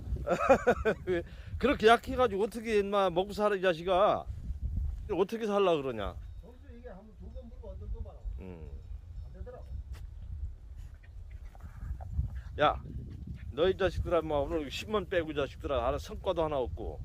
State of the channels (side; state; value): both; identical; correlation 1.00